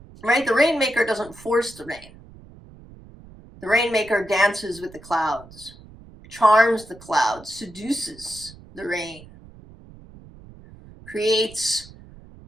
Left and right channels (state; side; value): noise; right; rumble, 21 dB below the sound